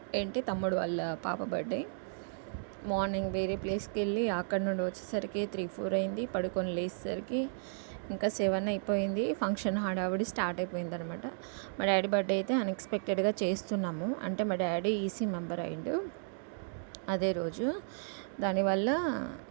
తమ్ముడు వాళ్ళ పాప బర్త్డే. మార్నింగ్ వేరే ప్లేస్కి వెళ్ళి అక్కడ నుండి వచ్చేసరికి 3-4 అయింది. పడుకొని లేచేసరికి ఇంకా 7 అయిపోయింది. ఫంక్షన్ హడావిడి స్టార్ట్ అయిపోయింది అనమాట. మా డాడీ బర్త్డే అయితే అన్ఎక్స్పెక్టెడ్గా చేస్తున్నాము. అంటే మా డాడీ ఈసీ మెంబర్ అయిండు అదే రోజు. దానివల్ల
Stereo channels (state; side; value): silent; left; digital silence